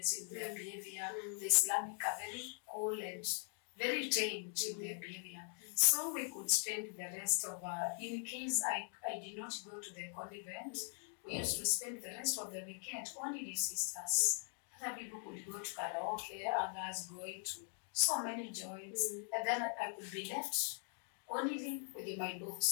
their behavior. The Islamic are very cool and very tamed in their behavior. So we could spend the rest of, in case I did not go to the convent, we used to spend the rest of the weekend only the sisters. Other people could go to karaoke, others going to so many joints, and then I could be left only with my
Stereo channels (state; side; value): silent; right; 50 dB below the other